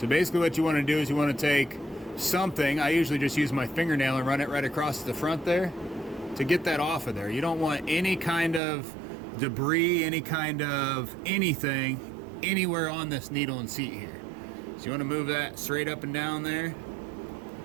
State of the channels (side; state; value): left; drops out; at 8.6 s